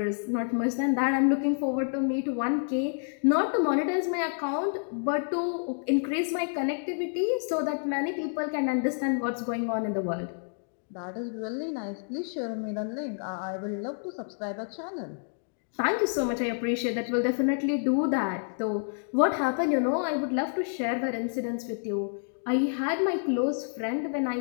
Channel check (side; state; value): right; silent; digital silence